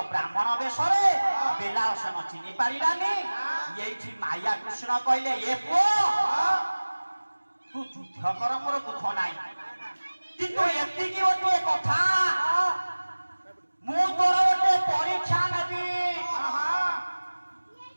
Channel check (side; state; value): both; inverted; correlation -1.00